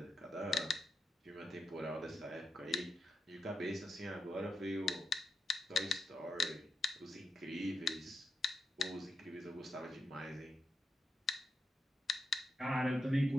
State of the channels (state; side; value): normal; both; correlation 0.85